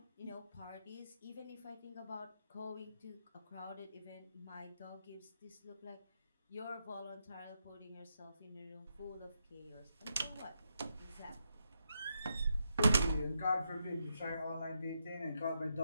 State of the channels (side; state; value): both; inverted; correlation -0.82